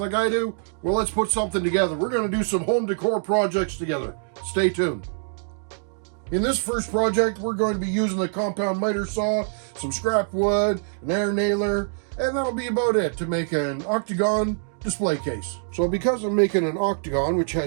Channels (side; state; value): left; silent; digital silence